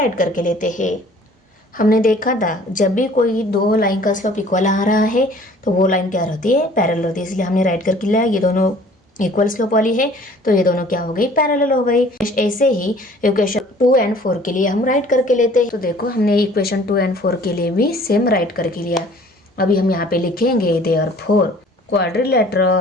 करके लेते हैं। हमने देखा था जब भी कोई 2 लाइन का स्लोप इक्वल आ रहा है तो वो लाइन क्या रहती है, पैरेलल रहती है, इसलिए हमने राइट करके लिया। ये दोनों इक्वल स्लोप वाली है तो ये दोनों क्या हो गई, पैरेलल हो गई। ऐसे ही इक्वेशन 2 and 4 के लिए हम राइट करके लेते हैं। तो देखो हमने इक्वेशन 2 and 4 के लिए भी सेम राइट करके लिया। अभी हम यहाँ पे लिखेंगे therefore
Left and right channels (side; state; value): both; normal; correlation 0.52